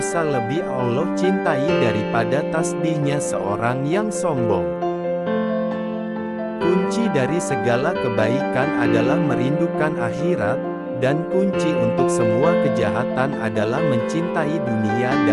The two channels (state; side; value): identical; both; correlation 1.00